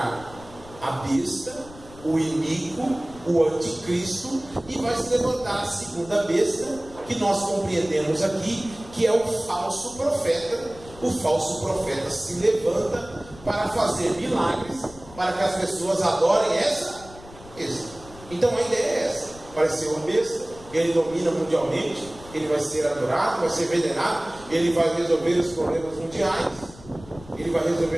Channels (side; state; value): left; noise; rumble, 19 dB below the sound